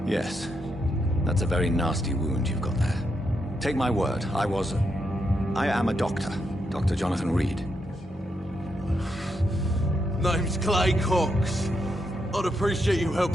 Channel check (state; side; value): normal; both; correlation 0.81